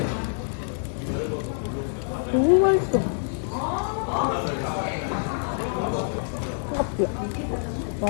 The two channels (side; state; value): right; silent; digital silence